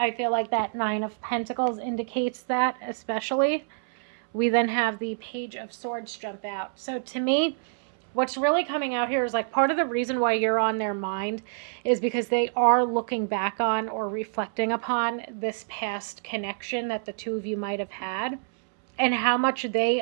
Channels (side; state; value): left; silent; 60 dB below the other